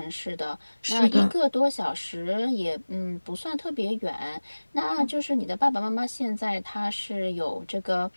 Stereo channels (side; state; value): both; inverted; correlation -1.00